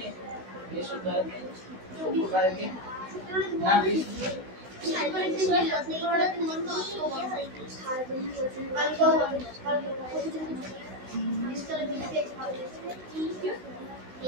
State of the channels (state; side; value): late; left; 16 ms